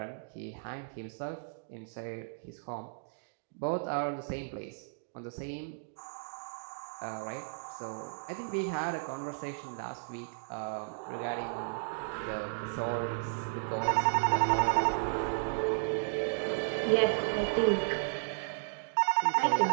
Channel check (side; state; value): left; silent; digital silence